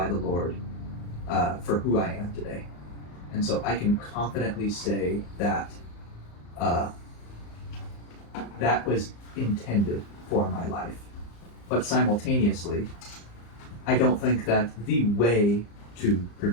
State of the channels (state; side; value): late; right; 34 ms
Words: the Lord for who I am today. And so I can confidently say that that was intended for my life. But simultaneously, I don't think that the way to